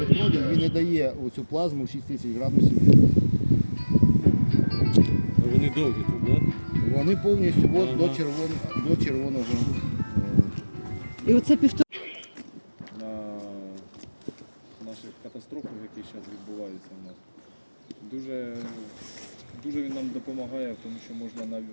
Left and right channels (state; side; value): inverted; both; correlation -1.00